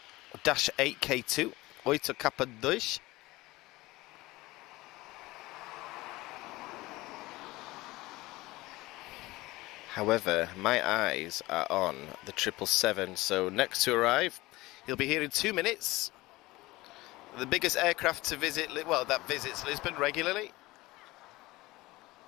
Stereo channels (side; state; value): right; quieter; 19.8 dB